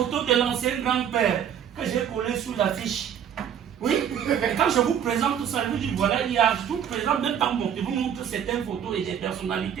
de l'ancien grand-père que j'ai collé sous l'affiche. Oui, et quand je vous présente tout ça, je vous dis voilà, il y a tout présent, même par mon, je vous montre certaines photos et des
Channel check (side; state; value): left; quieter; 8.9 dB